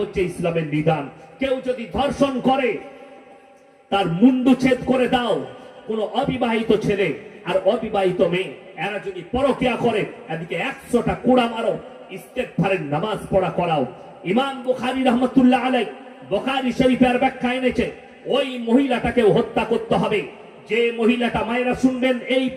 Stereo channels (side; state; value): both; identical; correlation 1.00